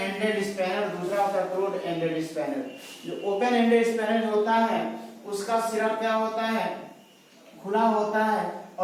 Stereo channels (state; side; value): identical; both; correlation 1.00